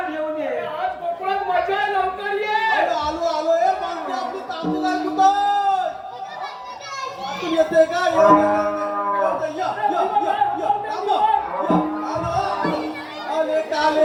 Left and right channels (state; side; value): identical; both; correlation 1.00